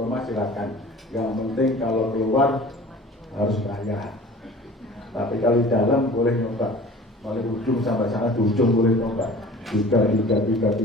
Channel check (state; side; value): normal; both; correlation 0.44